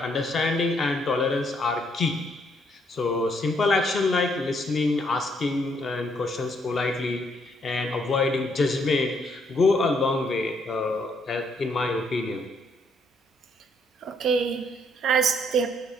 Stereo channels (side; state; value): both; normal; correlation 0.70